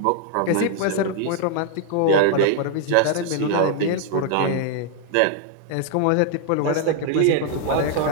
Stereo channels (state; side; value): different; both; correlation 0.00